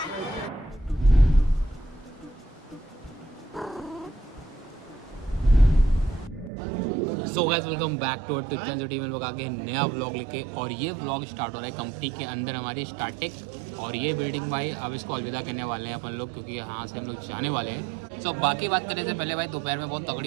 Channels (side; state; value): left; drops out; at 6.5 s